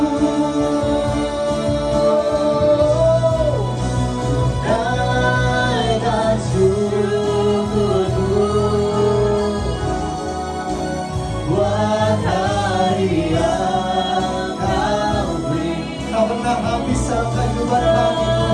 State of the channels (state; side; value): identical; both; correlation 1.00